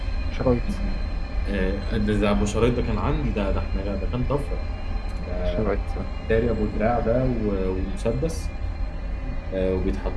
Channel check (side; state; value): both; identical; correlation 1.00